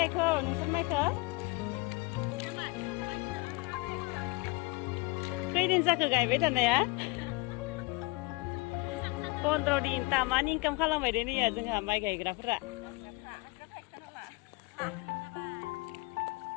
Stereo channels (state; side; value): quieter; right; 25.3 dB